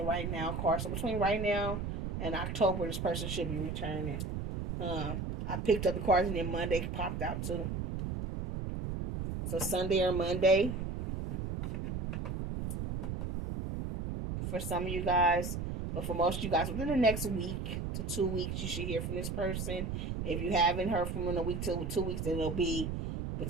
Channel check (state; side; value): noise; right; rumble, 3 dB below the sound